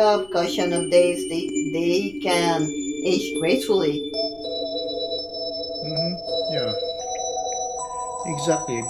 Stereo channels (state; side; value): noise; left; rumble, 24 dB below the sound